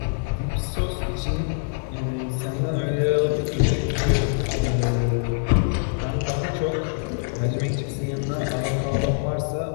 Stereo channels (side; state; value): right; silent; 56 dB below the other